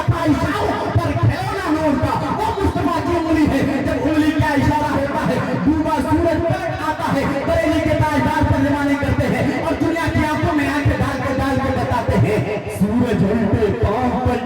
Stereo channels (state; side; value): identical; both; correlation 1.00